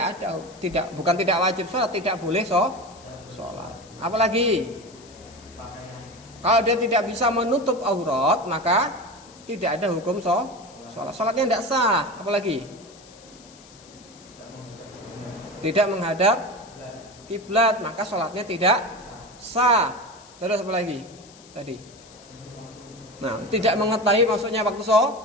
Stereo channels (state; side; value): noise; left; hiss, 23 dB below the sound